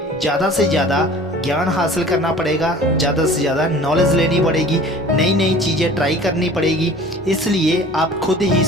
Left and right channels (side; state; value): both; normal; correlation 0.45